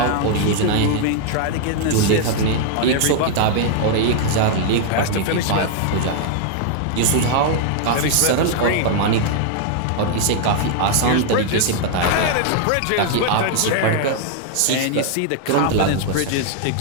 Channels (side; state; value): both; different; correlation 0.00